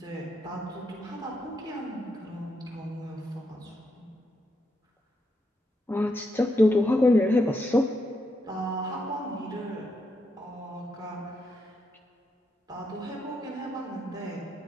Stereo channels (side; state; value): both; normal; correlation 0.81